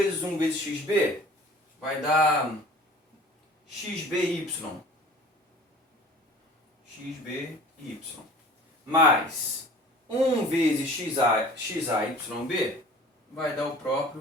1 vezes xb vai dar xby. Xby mais 1 vezes xayb vai dar o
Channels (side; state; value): both; normal; correlation 0.46